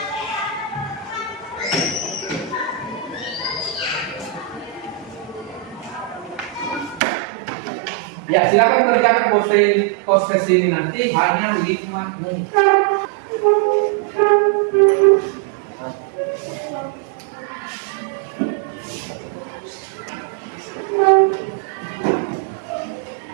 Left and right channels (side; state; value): left; drops out; at 7.0 s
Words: Ya, silakan kerjakan post test ini nanti hanya 5 menit.